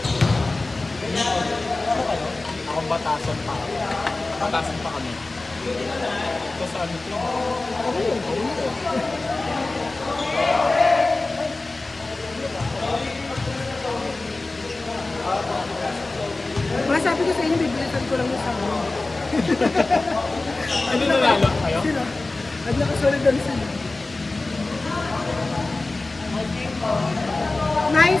Akong batasan pa. Batasan pa kami. Ito sa ano to? Mga sabi ko sa inyo, bibilisan ko lang yung sa ano. Ano nanalo kayo? Sino? At nakasunod doon sila.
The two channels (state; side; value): quieter; right; 3.2 dB